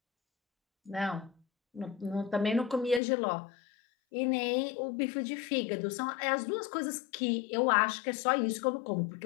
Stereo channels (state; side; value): drops out; right; at 3.0 s